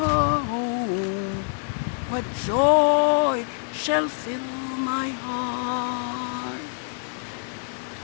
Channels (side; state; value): right; silent; 56 dB below the other